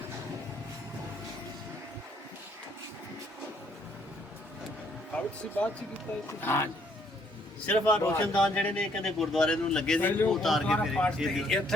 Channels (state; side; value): normal; both; correlation 0.67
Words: ਸਾਬਤ ਸੀ ਬਾਅਦ ਚ ਕੀਤਾ ਇਹ हाँ जी ਸਿਰਫ ਆ ਰੋਸ਼ਨਦਾਨ ਜਿਹੜੇ ਨੇ ਕਹਿੰਦੇ ਗੁਰਦੁਆਰੇ ਨੂੰ ਲੱਗੇ ਸੀ ਉਹ ਉਤਾਰ ਕੇ ਫਿਰ